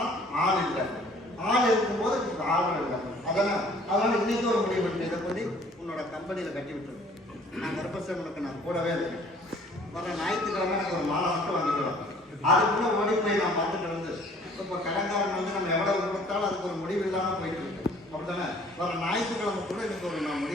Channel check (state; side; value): normal; both; correlation 0.55